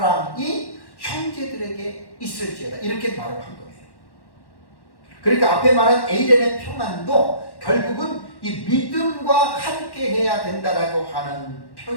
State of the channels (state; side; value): late; right; 1.1 ms